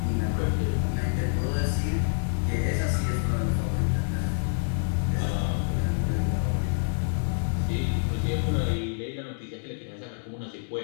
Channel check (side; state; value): right; silent; 60 dB below the other